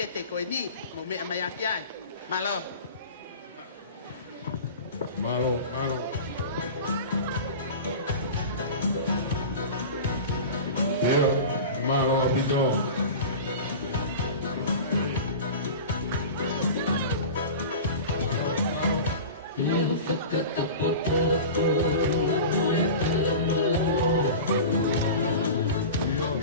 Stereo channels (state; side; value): inverted; both; correlation -0.33